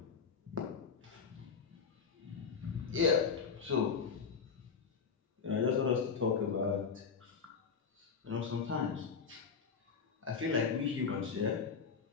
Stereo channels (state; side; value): quieter; right; 5.8 dB